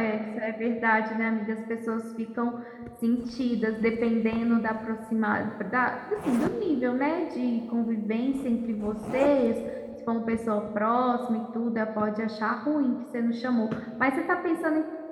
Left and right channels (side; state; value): both; identical; correlation 1.00